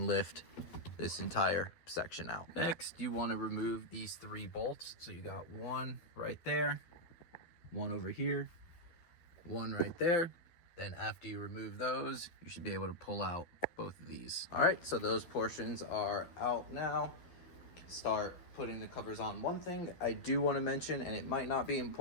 lift this entire section out. Next, you want to remove these three bolts. So you got one right there, one over here, one right there. Then after you remove those, you should be able to pull out both of these. All right, so those portions are out now. Start putting the covers on. One thing I do want to mention, and it might not be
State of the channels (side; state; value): right; late; 12 ms